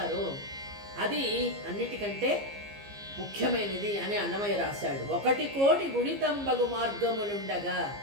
అది అన్నిటికంటే ముఖ్యమైనది అని అన్నమయ్య రాశాడు. 1 కోటి గుణితంబగు మార్గములుండగా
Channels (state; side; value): late; left; 15 ms